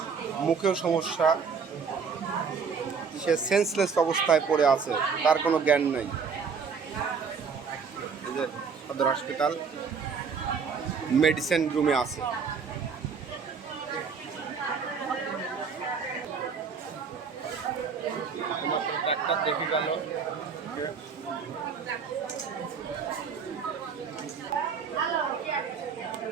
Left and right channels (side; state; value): left; quieter; 5.8 dB